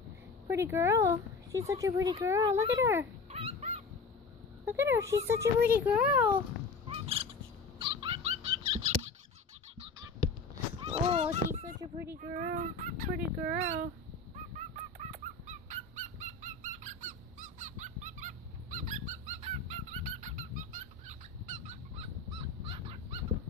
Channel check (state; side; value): quieter; right; 4.3 dB